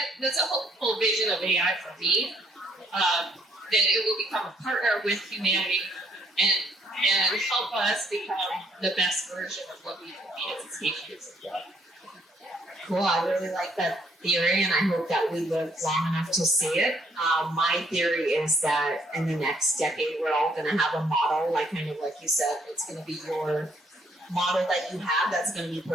that's a whole vision of AI for me, that it will become a partner with humanity and help us become the best version of what we can be as a species. Cool. I really like that theory, and I hope that we live long enough to see it. My theory is that in the next decade, we're all going to have a model, like kind of like you said, it's going to be your model that you have that's going to be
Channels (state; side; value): normal; both; correlation 0.68